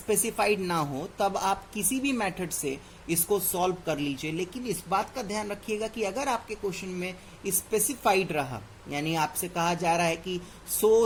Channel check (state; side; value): identical; both; correlation 1.00